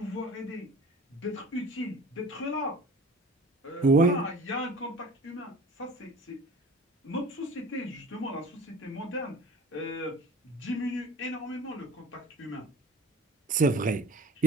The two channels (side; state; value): both; normal; correlation 0.43